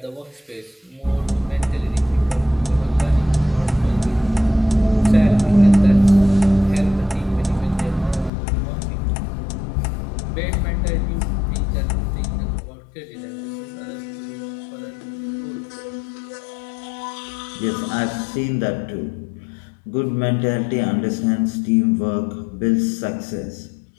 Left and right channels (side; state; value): right; drops out; at 8.3 s